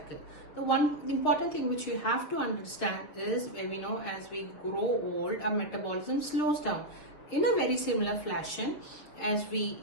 The one important thing which you have to understand is, we know as we grow old, our metabolism slows down. In a very similar fashion, as we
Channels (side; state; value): right; late; 6.6 ms